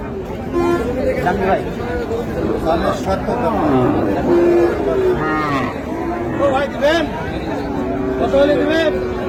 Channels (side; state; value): both; identical; correlation 1.00